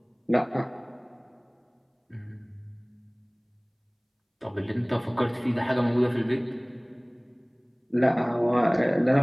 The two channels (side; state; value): both; identical; correlation 1.00